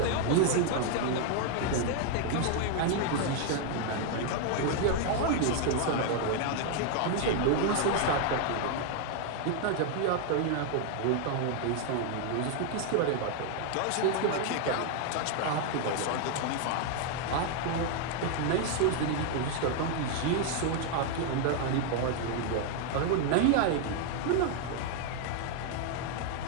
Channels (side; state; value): both; different; correlation 0.00